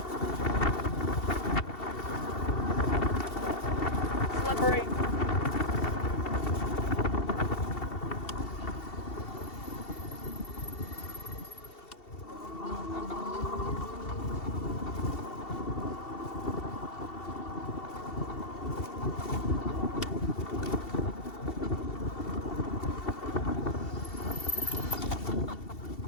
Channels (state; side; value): late; right; 2.7 ms